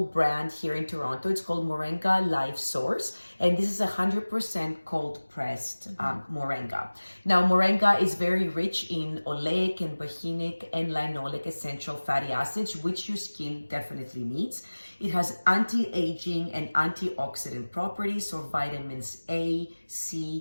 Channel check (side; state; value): both; inverted; correlation -1.00